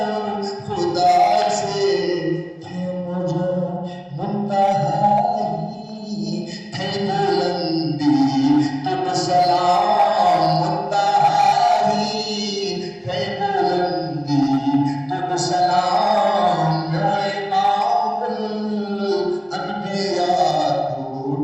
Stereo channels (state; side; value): identical; both; correlation 1.00